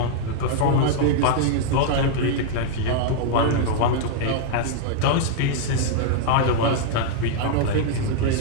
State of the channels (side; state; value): both; different; correlation -0.01